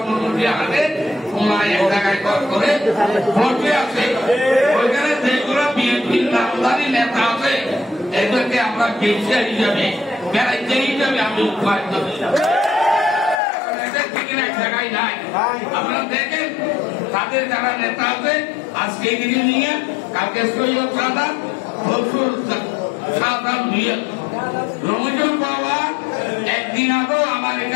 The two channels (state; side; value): drops out; right; at 13.4 s